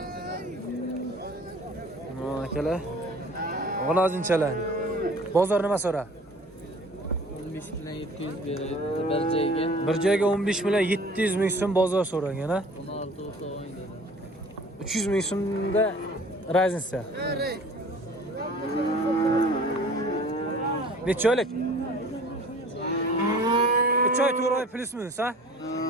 Akalar. G'unajinchalar. Bozor nima so'ra? 15 bilan 700 beradi bir joyga. Bir joyga 15 million 700 ming so'm bozor so'ragan ha. 16 olsa o'ydi. 300 ming so'mda Raznica. Necha oylik? 3 oy 4 oy plus minus ha?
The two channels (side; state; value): both; normal; correlation 0.48